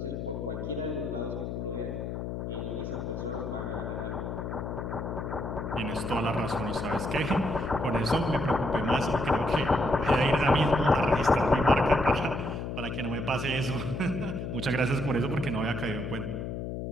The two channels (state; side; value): noise; left; hum, 5 dB below the sound